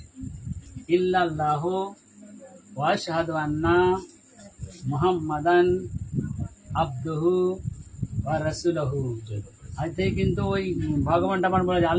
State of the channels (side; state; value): both; identical; correlation 1.00